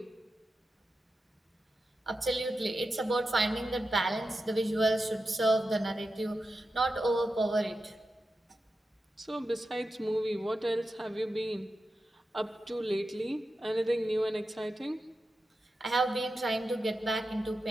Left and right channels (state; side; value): normal; both; correlation 0.90